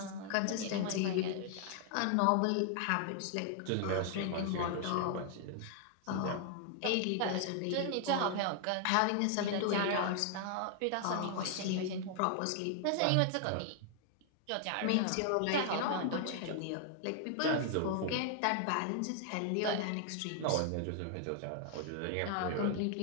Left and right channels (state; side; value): different; both; correlation 0.00